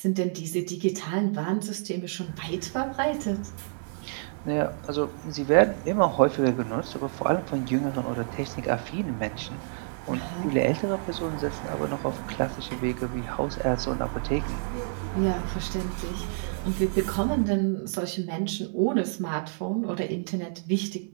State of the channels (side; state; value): left; silent; digital silence